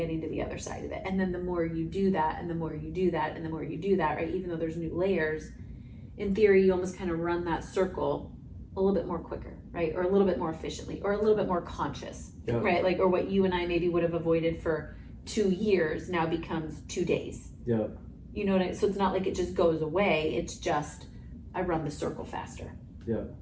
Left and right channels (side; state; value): both; identical; correlation 1.00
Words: to the other side of it. And then the more you do that, and the more you do that, and the more you do that, right? Even though there's new layers, in theory, you almost kind of run that circle a little bit more quicker, right? Or a little bit more efficiently, or a little bit more conscious, right? Like, or what you and I maybe would have avoided for 2 years now becomes 2 days. Yeah. You know what I mean? So it's not like it just goes away. It's just, I run the circle faster. Yeah,